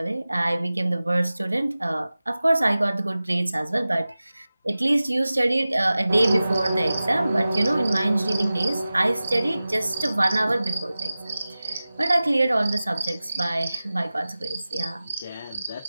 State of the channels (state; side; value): inverted; both; correlation -0.96